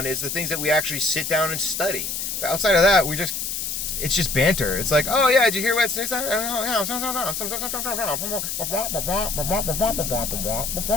is the things that we actually sit down and study. But outside of that, it's just banter. It's like, oh yeah, did you hear what?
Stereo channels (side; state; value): left; noise; hiss, 3 dB below the sound